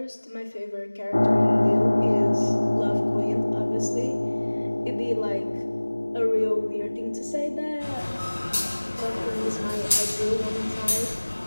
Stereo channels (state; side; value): inverted; both; correlation -1.00